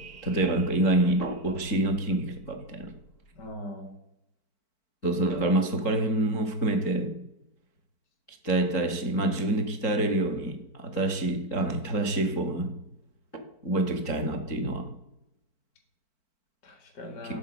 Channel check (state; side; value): late; right; 4.5 ms